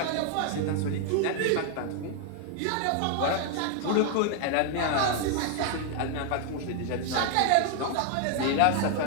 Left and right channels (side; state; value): both; different; correlation 0.00